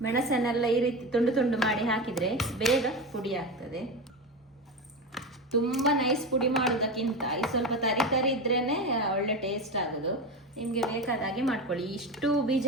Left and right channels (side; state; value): both; normal; correlation 0.21